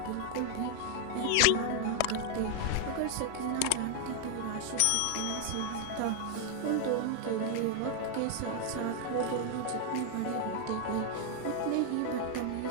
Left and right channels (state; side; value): different; both; correlation 0.00